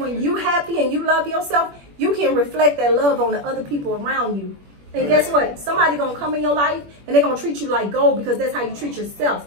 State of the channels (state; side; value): late; left; 21 ms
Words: you happy and you love yourself, you can reflect that love on the other people around you. And guess what? Somebody gonna come in your life and they're gonna treat you like gold because that's how you treat yourself.